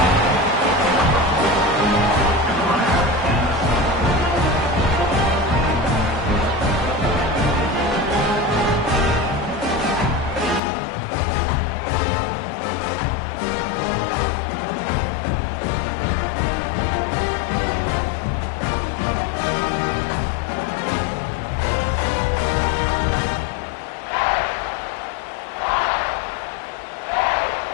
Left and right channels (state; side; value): drops out; right; at 10.6 s